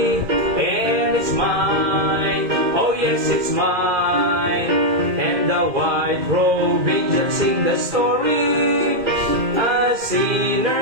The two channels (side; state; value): left; late; 2.1 ms